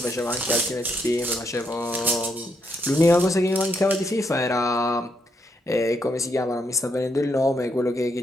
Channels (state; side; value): normal; both; correlation 0.78